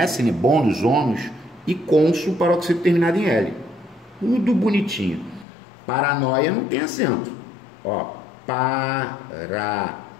né? Bônus, ônus, e cônsul, paroxítona terminada em L. Tudo bonitinho. Paranoia não tem acento. Ó, paranoia,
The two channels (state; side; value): drops out; right; at 5.5 s